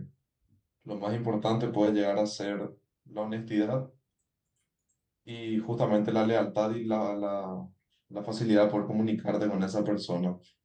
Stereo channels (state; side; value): identical; both; correlation 1.00